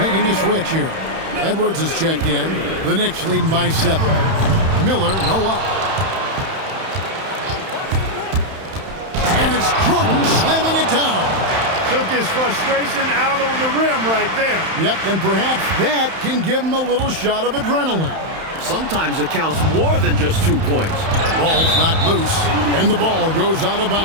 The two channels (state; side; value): late; left; 31 ms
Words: making a switch here. Edwards is checked in. The Knicks leading by 7. Miller, no up. And it's Jordan slamming it down. Took his frustration out on the rim right there. Yep, and perhaps that can give him a little shot of adrenaline. Sometimes it counts more than just 2 points. Ball's knocked loose, and the ball goes out of